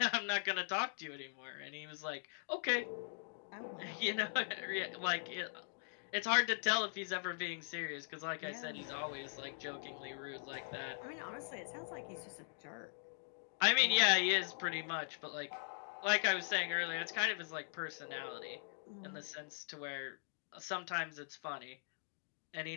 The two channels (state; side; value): silent; right; digital silence